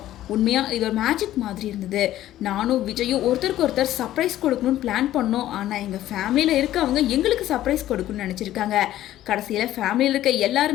உண்மையா இது ஒரு மேஜிக் மாதிரி இருந்தது. நானும் விஜயும் ஒருத்தருக்கு ஒருத்தர் சர்ப்ரைஸ் கொடுக்கணும்னு பிளான் பண்ணோம். ஆனா எங்க ஃபேமிலியில இருக்கவங்க எங்களுக்கு சர்ப்ரைஸ் கொடுக்கணும்னு நினைச்சிருக்காங்க. கடைசியில ஃபேமிலியில் இருக்க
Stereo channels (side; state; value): right; quieter; 13.5 dB